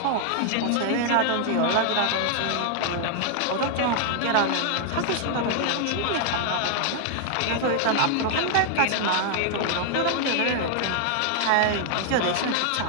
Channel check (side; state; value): both; different; correlation 0.00